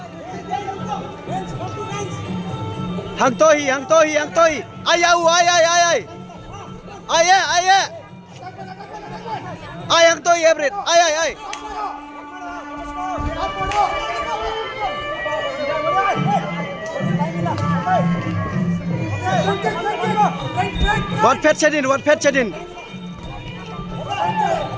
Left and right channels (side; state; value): both; identical; correlation 1.00